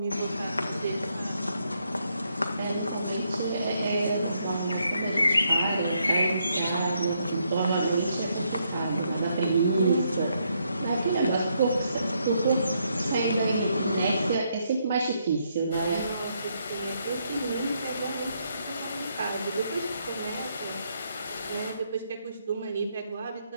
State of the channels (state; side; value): inverted; both; correlation -0.76